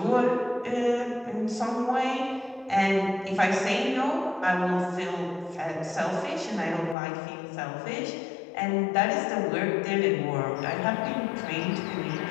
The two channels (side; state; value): right; drops out; at 7.0 s